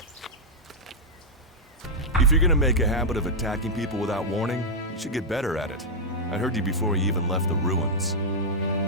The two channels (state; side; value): normal; both; correlation -0.05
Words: If you're gonna make a habit of attacking people without warning, you should get better at it. I heard you before you even left the ruins.